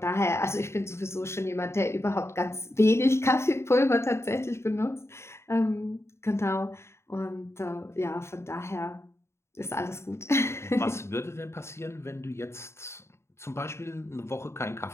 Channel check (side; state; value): right; late; 0.13 ms